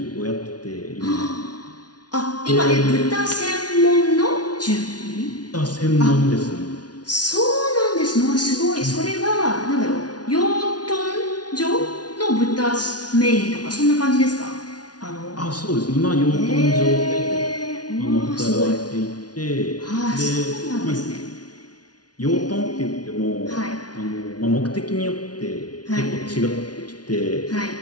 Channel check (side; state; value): right; late; 0.69 ms